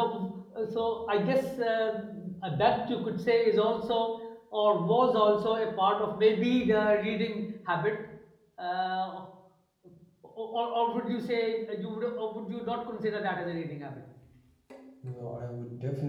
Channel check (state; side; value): identical; both; correlation 1.00